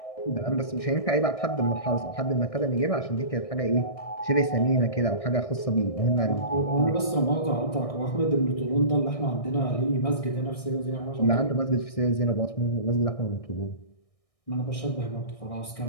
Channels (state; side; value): late; right; 1.6 ms